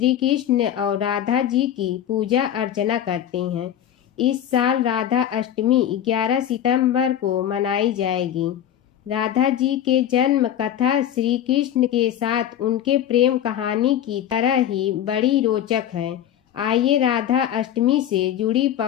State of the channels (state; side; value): quieter; right; 10.7 dB